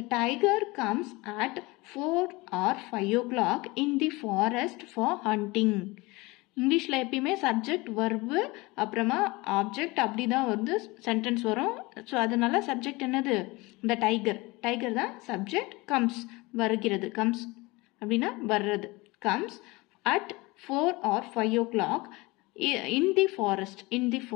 tiger comes at 4 or 5 o'clock in the forest for hunting இங்கிலீஷ்ல எப்பயுமே சப்ஜெக்ட் வெர்பு அப்புறமா ஆப்ஜெக்ட் அப்படிதான் வந்து சென்டென்ஸ் வரும் ஸோ அதனால சப்ஜெக்ட் என்னது இந்த டைகர் தான் சப்ஜெக்ட் கம்ஸ் வருகிறது கம்ஸ் அப்படின்னா வர்றது comes at 4 or 5 o'clock in the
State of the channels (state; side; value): quieter; right; 23.3 dB